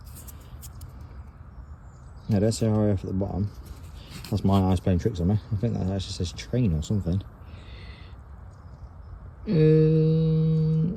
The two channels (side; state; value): both; identical; correlation 1.00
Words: No, don't say RAF at the bottom. That's my eyes playing tricks on me. I think that actually says train or something.